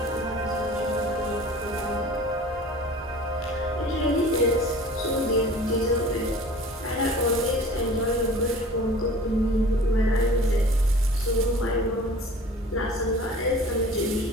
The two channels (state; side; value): normal; both; correlation 0.44